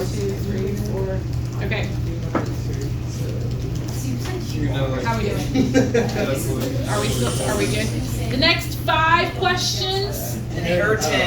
2, 3, 4. Okay. How are we doing? Are we good? The next 5 questions.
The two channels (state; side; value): identical; both; correlation 1.00